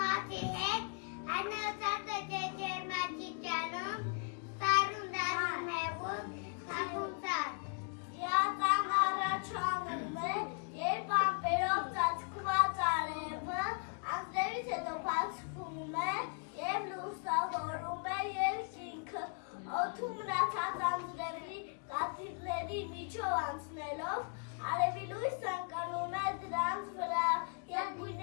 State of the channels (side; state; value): right; quieter; 38.8 dB